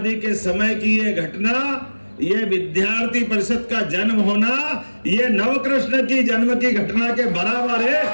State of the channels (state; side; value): inverted; both; correlation -1.00